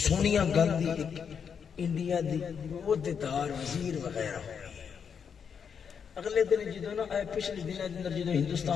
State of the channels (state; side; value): quieter; right; 7.0 dB